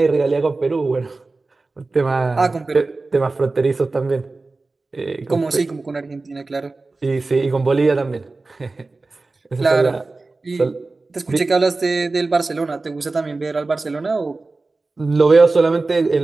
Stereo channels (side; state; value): left; quieter; 3.5 dB